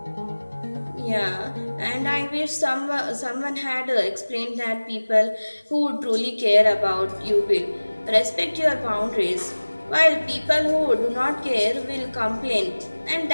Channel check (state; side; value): inverted; both; correlation -1.00